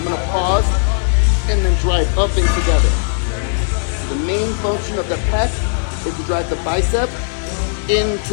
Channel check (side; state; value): right; silent; 68 dB below the other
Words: gonna pause and then drive up and together. The main function of the pec is to drive the bicep into